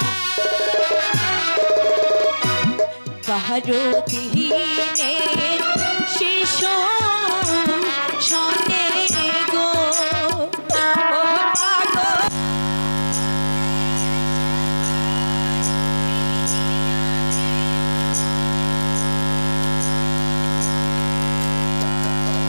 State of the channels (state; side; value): inverted; both; correlation -1.00